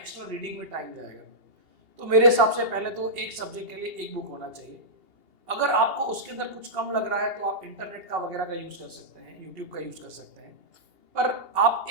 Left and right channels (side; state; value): left; late; 2.8 ms